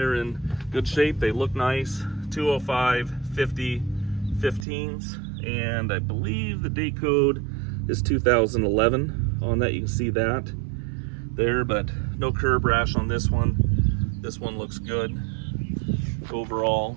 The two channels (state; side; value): drops out; left; at 4.7 s